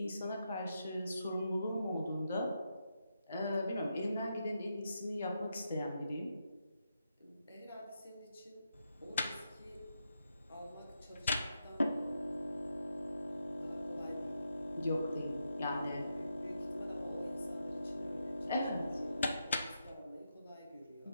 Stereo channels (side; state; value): both; inverted; correlation -0.84